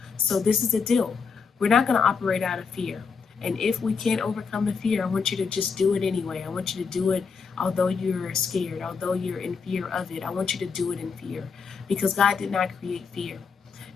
So this is the deal. We're not going to operate out of fear. And if we can't overcome the fear, I want you to just do it anyway. I want you to do it although you're scared, although you're in fear of it. I want you to do it in fear because God did not create fear.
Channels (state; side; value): quieter; right; 5.5 dB